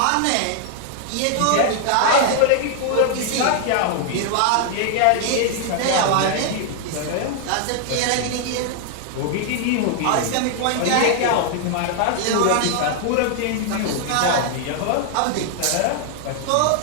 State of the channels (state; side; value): different; both; correlation 0.00